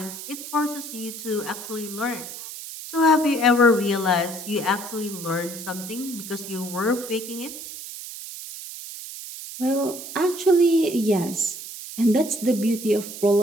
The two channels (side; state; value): right; noise; hiss, 11 dB below the sound